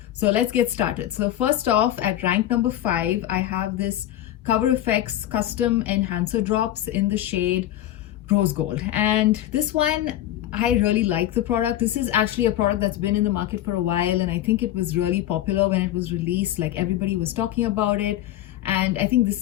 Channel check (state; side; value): quieter; right; 13.1 dB